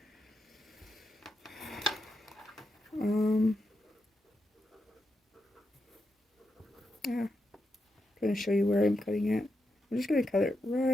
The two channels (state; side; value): normal; both; correlation 0.86